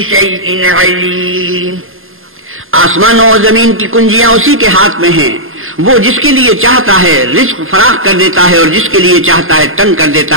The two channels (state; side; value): late; left; 0.60 ms